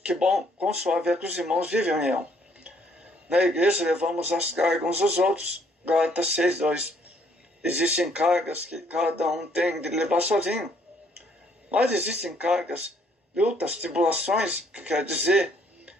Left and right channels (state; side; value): normal; both; correlation 0.65